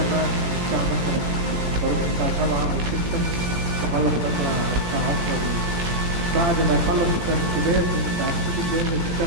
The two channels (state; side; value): late; left; 17 ms